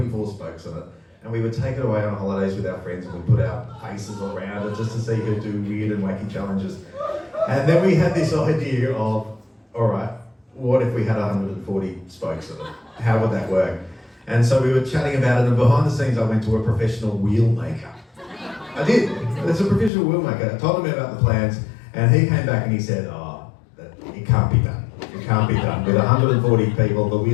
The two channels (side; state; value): right; drops out; at 19.9 s